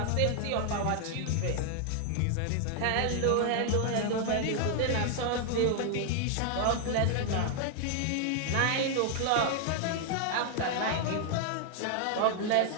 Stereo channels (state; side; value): different; both; correlation 0.00